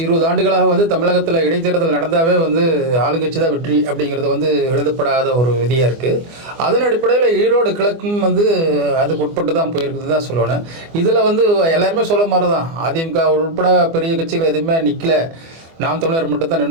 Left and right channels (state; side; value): late; left; 24 ms